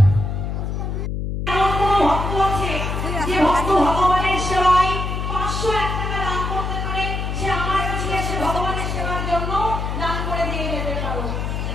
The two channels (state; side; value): noise; left; hum, 3 dB below the sound